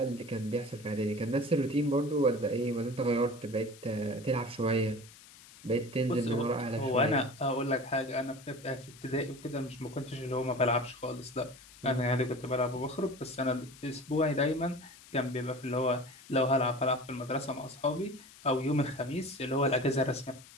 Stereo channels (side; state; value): left; noise; hiss, 21 dB below the sound